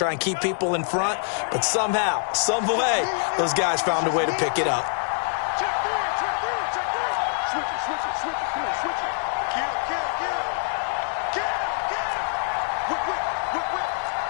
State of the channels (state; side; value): silent; right; 62 dB below the other